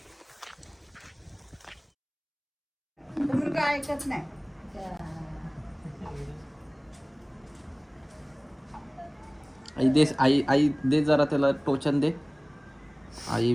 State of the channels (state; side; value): identical; both; correlation 1.00